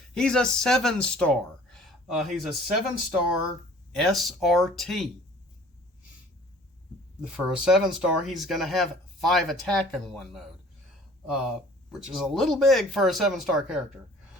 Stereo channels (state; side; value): normal; both; correlation 0.50